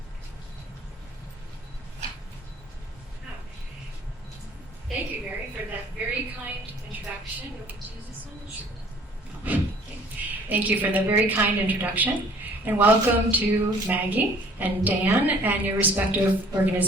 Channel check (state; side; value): normal; both; correlation 0.54